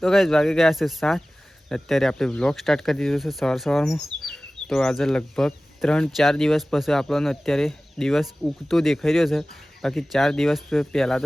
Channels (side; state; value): both; normal; correlation 0.97